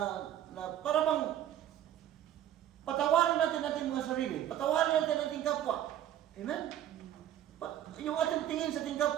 para bang patawarin natin ating mga sarili, patawarin natin ating kapwa. Amen? Yung ating tingin sa ating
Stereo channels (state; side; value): quieter; left; 11.5 dB